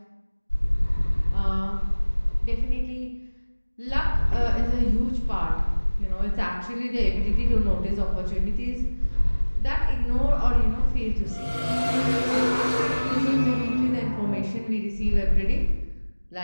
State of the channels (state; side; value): inverted; both; correlation -1.00